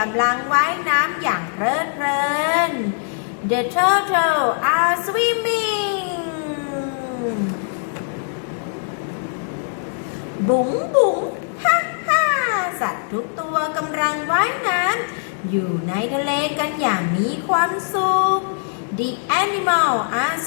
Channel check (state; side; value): silent; right; digital silence